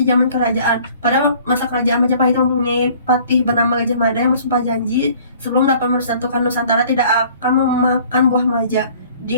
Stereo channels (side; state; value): both; inverted; correlation -0.53